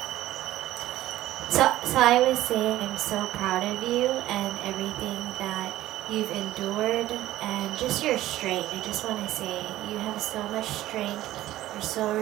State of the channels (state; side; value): quieter; left; 14.9 dB